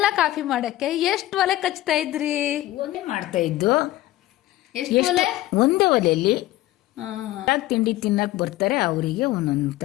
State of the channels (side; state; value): right; quieter; 15.9 dB